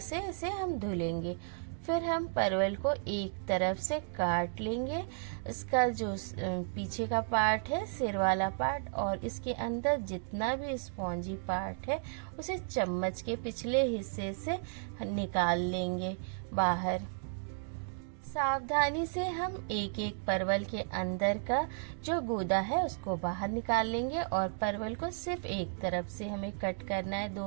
इसे हम धुलेंगे। फिर हम परवल को एक तरफ से काट लेंगे। इसका जो पीछे का पार्ट है, सिर वाला पार्ट, और इसके अंदर जितना भी स्पॉन्जी पार्ट है उसे चम्मच के पिछले हिस्से से निकाल लेंगे बाहर। सावधानी से हम एक एक परवल के अंदर का जो गूदा है उसको बाहर निकाल लेंगे और परवल को सिर्फ एक तरफ से हमें कट करना है,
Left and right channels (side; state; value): left; silent; digital silence